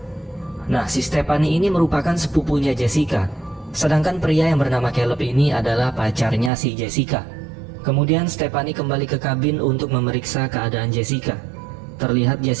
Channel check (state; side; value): drops out; left; at 6.5 s